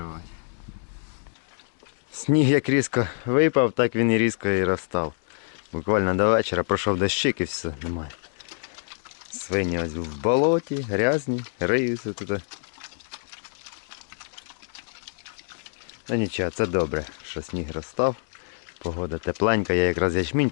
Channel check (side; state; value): right; silent; 61 dB below the other